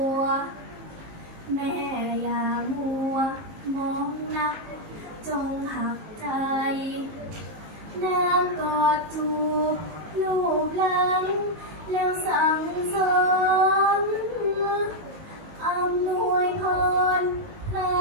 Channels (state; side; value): late; left; 19 ms